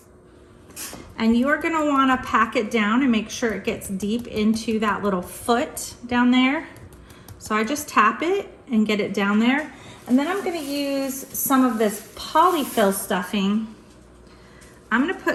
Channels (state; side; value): identical; both; correlation 1.00